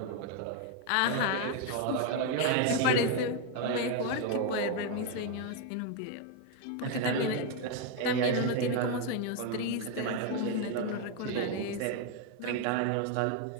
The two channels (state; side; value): different; both; correlation 0.01